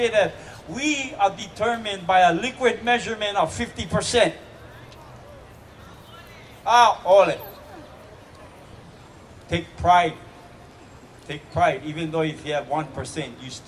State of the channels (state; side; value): identical; both; correlation 1.00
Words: that we are determined by a liquid measurement of 50%. Ole. Take pride. Take pride. Even though if you have 1%, you're